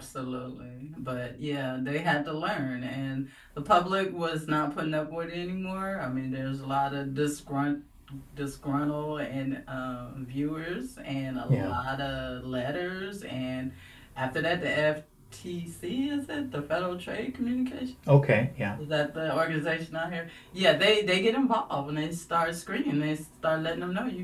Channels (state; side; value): identical; both; correlation 1.00